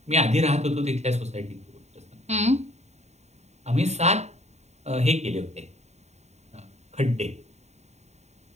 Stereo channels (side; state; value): left; late; 0.32 ms